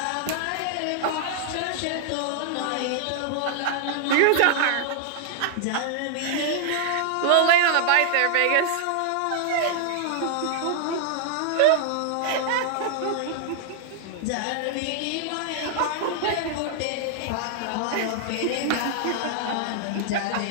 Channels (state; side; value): different; both; correlation -0.01